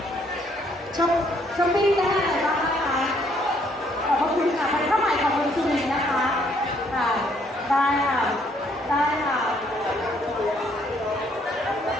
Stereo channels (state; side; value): normal; both; correlation 0.67